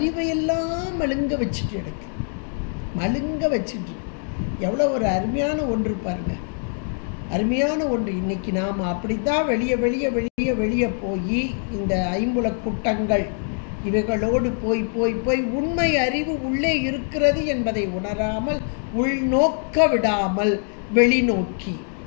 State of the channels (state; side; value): silent; right; 57 dB below the other